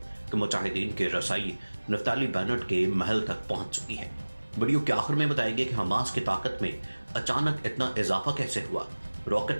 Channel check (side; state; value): both; inverted; correlation -1.00